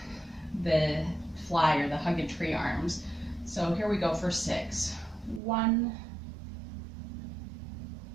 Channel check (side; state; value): left; drops out; at 5.4 s